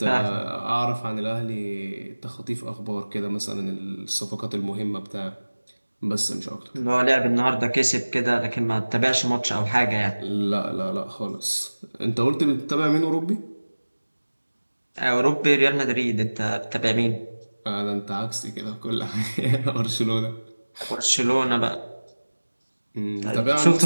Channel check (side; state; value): both; inverted; correlation -1.00